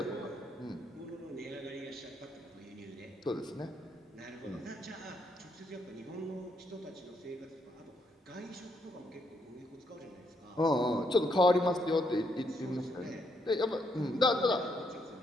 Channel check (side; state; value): both; normal; correlation 0.75